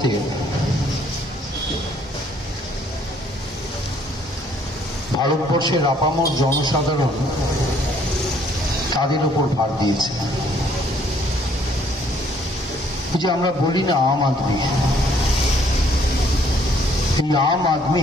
ভারতবর্ষের আপামর জনসাধারণ তাদের উপর ভার দিয়েছে। যে আমরা বলি না আম আদমি, এই আম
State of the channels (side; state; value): both; normal; correlation 0.64